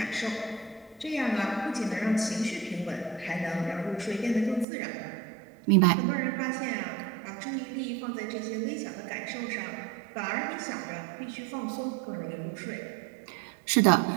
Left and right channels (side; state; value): left; drops out; at 4.7 s